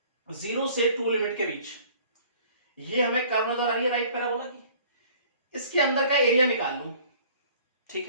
0 से 2 लिमिट के बीच, ये हमें कर्व नजर आ रही है राइट पैराबोला की, इसके अंदर का एरिया निकाल लूं, ठीक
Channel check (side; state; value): both; inverted; correlation -0.52